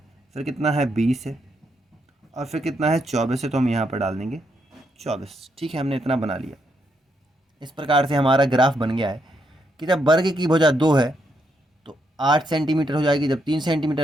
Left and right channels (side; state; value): both; normal; correlation 0.78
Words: फिर कितना है 20 है, और फिर कितना है 24 है, तो हम यहाँ पर डाल देंगे 24। ठीक है, हमने इतना बना लिया। इस प्रकार से हमारा ग्राफ बन गया है कि जब वर्ग की भुजा 2 है तो 8 सेंटीमीटर हो जाएगी, जब 3 सेंटीमीटर